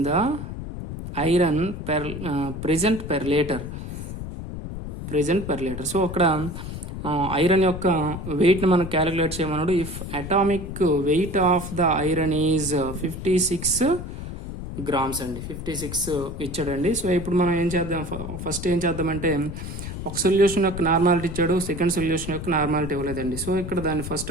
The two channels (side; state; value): left; noise; rumble, 8 dB below the sound